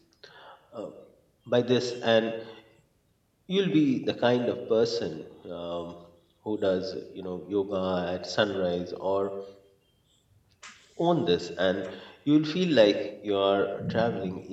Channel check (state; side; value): identical; both; correlation 1.00